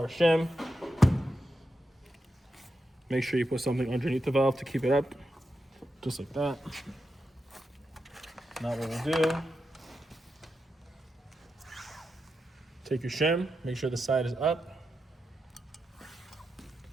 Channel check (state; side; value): normal; both; correlation 0.87